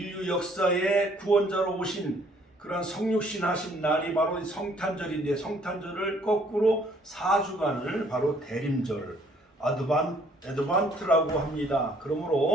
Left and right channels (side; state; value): both; normal; correlation 0.62